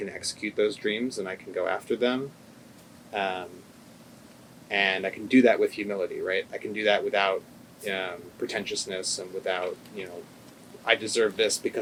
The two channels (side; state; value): both; identical; correlation 1.00